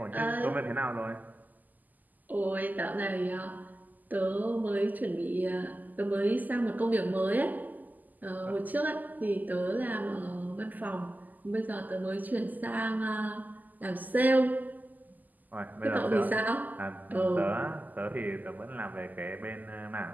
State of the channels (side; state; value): left; late; 0.083 ms